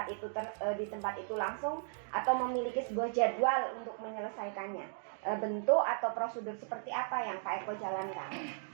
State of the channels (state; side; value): silent; left; digital silence